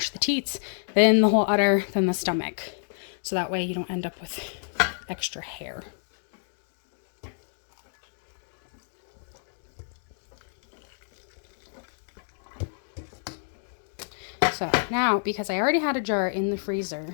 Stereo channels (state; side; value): silent; right; digital silence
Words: the teats, then the whole udder, then the stomach. So that way you don't end up with extra hair. So now, because I already had a jar in the freezer